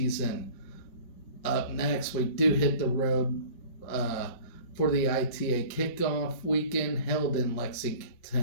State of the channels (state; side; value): late; right; 5.4 ms